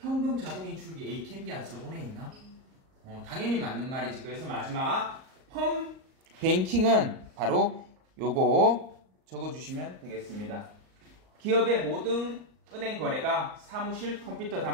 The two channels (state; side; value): late; left; 38 ms